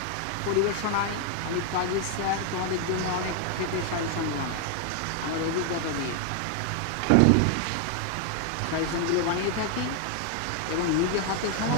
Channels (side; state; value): both; different; correlation 0.00